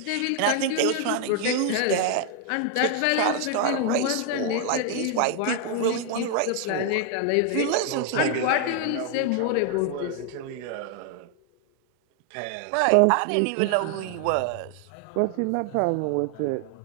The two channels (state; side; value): different; both; correlation 0.00